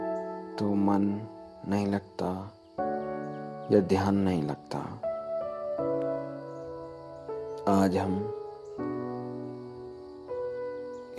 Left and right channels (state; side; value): identical; both; correlation 1.00